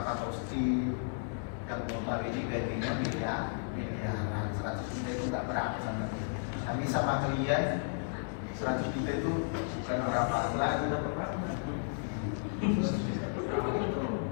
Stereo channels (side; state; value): right; silent; digital silence